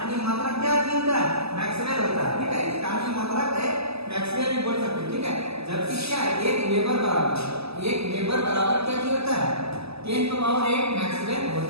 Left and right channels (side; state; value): left; late; 0.79 ms